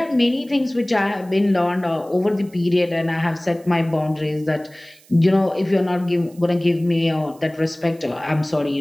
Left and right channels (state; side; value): noise; right; hiss, 27 dB below the sound